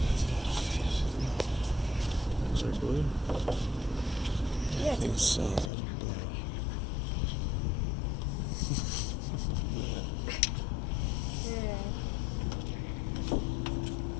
Is there blue? Yeah, I think so. Is that blue?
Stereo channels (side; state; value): right; drops out; at 5.7 s